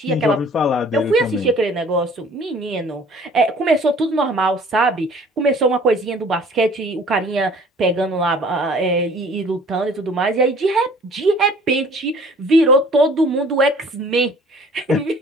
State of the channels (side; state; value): both; normal; correlation 0.51